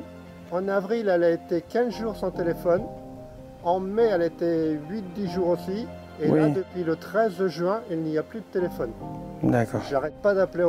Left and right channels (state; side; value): identical; both; correlation 1.00